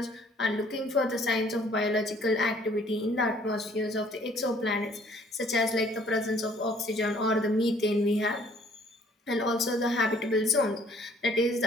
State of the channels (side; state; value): both; normal; correlation 0.59